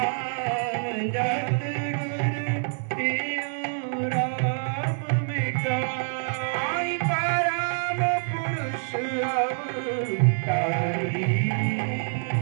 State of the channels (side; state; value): left; silent; 61 dB below the other